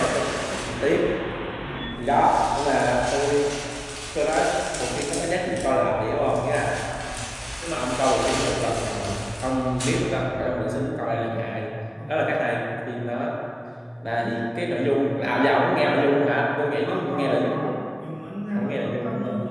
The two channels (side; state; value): both; identical; correlation 1.00